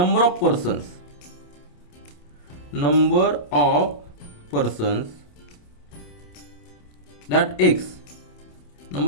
of persons that x,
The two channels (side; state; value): right; late; 28 ms